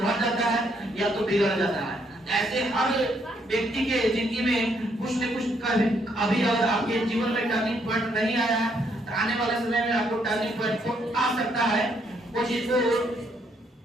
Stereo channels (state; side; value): normal; both; correlation 0.72